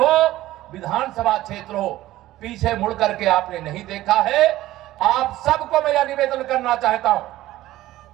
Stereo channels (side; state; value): left; quieter; 15.6 dB